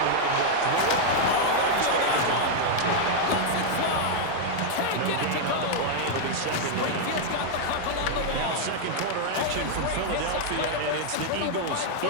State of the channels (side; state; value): both; different; correlation 0.00